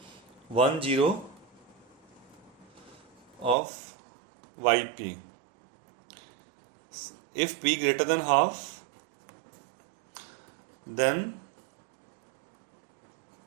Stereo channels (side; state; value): left; drops out; at 3.6 s